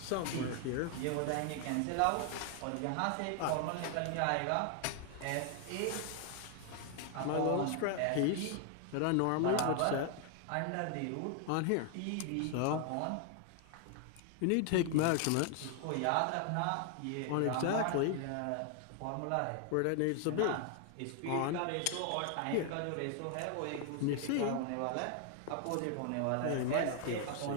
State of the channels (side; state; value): both; different; correlation 0.00